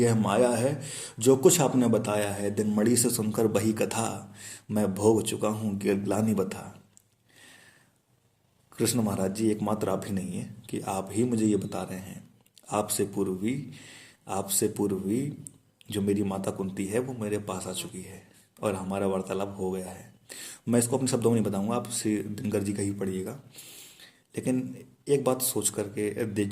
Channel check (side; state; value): both; identical; correlation 1.00